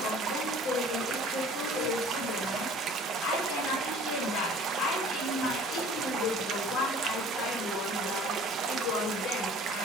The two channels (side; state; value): both; normal; correlation 0.49